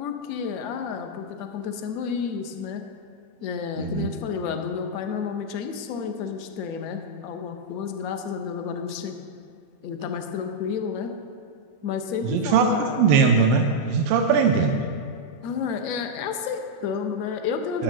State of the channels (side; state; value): left; late; 20 ms